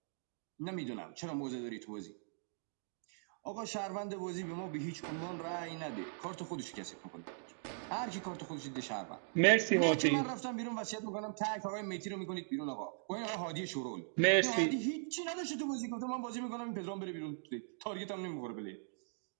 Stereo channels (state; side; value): silent; left; digital silence